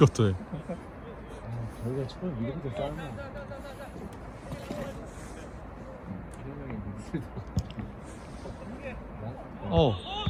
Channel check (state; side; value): identical; both; correlation 1.00